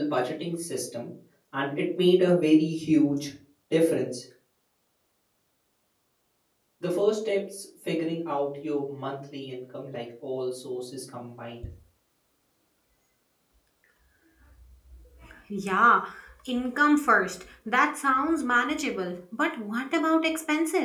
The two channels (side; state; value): both; identical; correlation 1.00